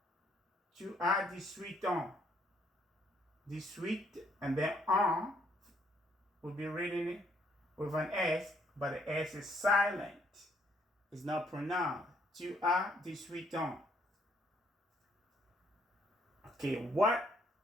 Tu as 18 ans. 18, and then ans will be written with an S, but the S is silent. It's not pronounced. Tu as 18 ans. Okay, what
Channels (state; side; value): normal; both; correlation 0.68